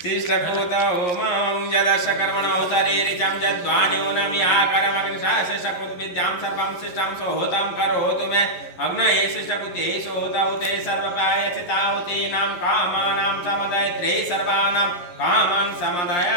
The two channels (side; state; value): right; late; 11 ms